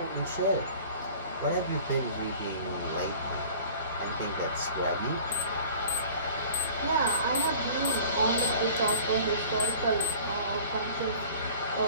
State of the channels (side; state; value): both; inverted; correlation -0.45